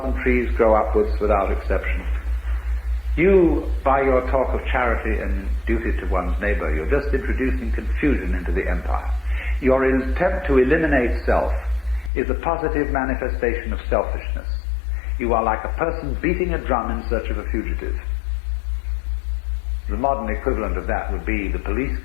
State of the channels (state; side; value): drops out; right; at 12.1 s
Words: and trees grow upwards without exception. You, by your talk of charity and duty to one's neighbor, you're just introducing confusion into the empire. Your attempt to eliminate self is a positive manifestation of selfishness. You are like a person beating a drum in search of a fugitive. The modern equivalent of that would be the police